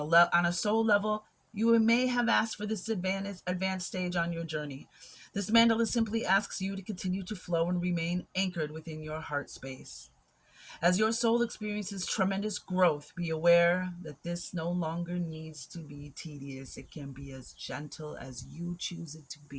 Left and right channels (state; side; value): identical; both; correlation 1.00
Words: soul level, you may have asked for this advanced stage on your journey. This mandala simply asks you to continue to flow and remain anchored within your heart space. As your soul experiences tremendous growth, be aware that this no longer needs to be tedious. It can be as gentle as you choose it to